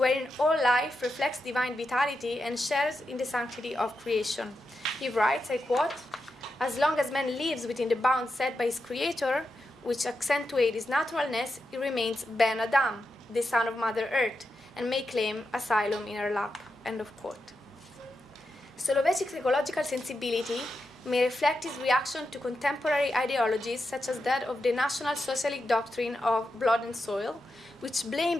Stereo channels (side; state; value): both; normal; correlation 0.87